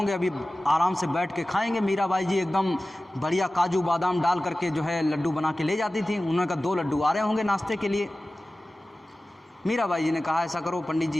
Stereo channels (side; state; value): both; normal; correlation 0.96